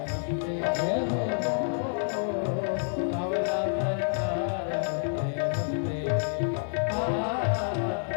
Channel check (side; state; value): right; silent; digital silence